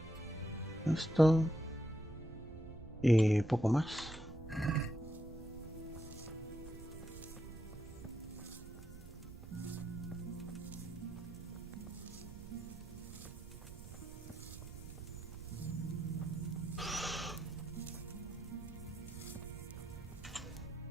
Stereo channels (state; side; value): noise; right; rumble, 13 dB below the sound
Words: Esto. Y poco más.